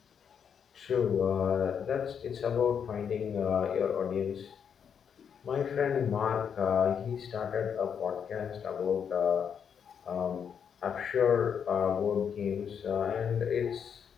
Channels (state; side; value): quieter; right; 7.5 dB